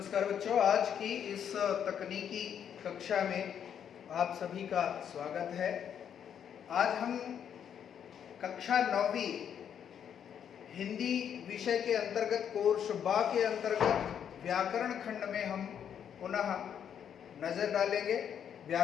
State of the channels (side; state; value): right; quieter; 8.6 dB